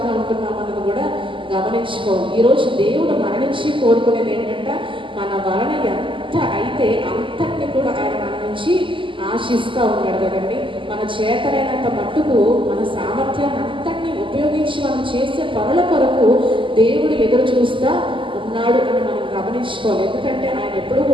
ఉంటున్నామన్నది కూడా గమనించుకోవాలి. ఈరోజు దేవుడు మన నుంచి కోరుకునేది ఏంటంటే, మన వలన ఎంత అయితే అంతటిని కూడా ఆయన మన నుంచి ఆశిస్తూ ఉన్నాడు కదండి. మన చేతనైనంత మట్టుకు మన సామర్థ్యాన్ని అంతటినీ ఉపయోగించి మనం చేసే పనుల కొరకు దేవుడు ఎదురు చూస్తూ ఉన్నాడు అని మనం గమనించుకోవాలి. ఎందుకంటే ఆయన ఎప్పుడు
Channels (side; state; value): left; late; 0.25 ms